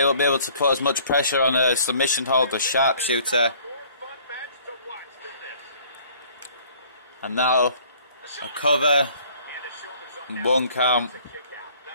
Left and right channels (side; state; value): both; inverted; correlation -0.56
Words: won't be able to put as much pressure on a submission hold or sharpshooter. And now a cover. 1 count.